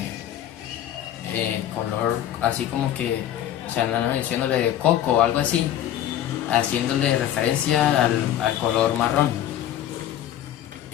color así como que, o sea, no, diciéndole de coco o algo así, haciéndole referencia al color marrón.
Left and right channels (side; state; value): right; quieter; 11.5 dB